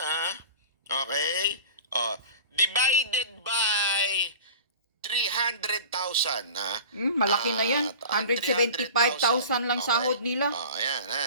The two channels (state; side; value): inverted; both; correlation -0.38